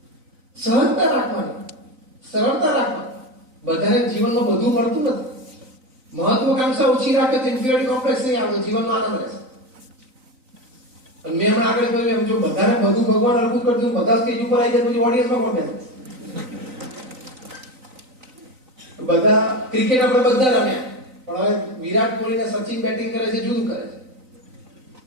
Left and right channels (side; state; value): left; late; 3.9 ms